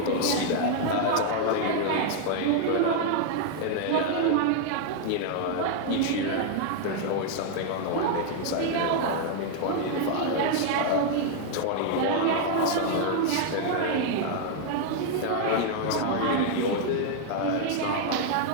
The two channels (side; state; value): both; different; correlation 0.00